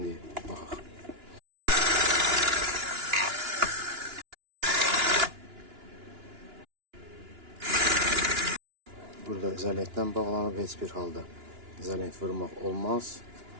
baxaq. Burada izolentlə bağlanıb, heç bir halda izolent vurmaq olmaz.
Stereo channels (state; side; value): late; left; 2.9 ms